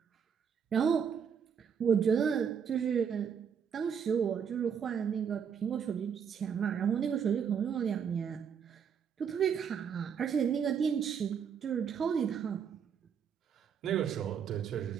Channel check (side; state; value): left; quieter; 7.4 dB